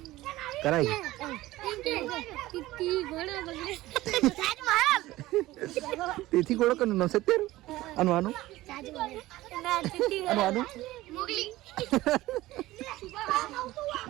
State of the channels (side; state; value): left; quieter; 17.2 dB